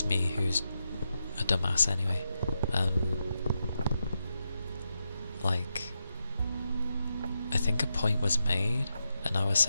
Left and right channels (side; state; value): both; inverted; correlation -0.86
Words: me, who's a dumbass anyway. Like, I think a point was made and I was